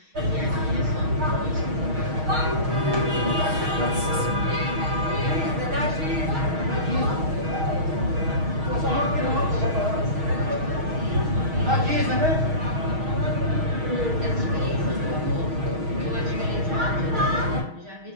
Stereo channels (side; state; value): left; late; 6.4 ms